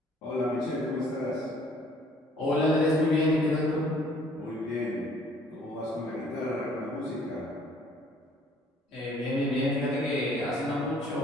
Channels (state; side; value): normal; both; correlation 0.59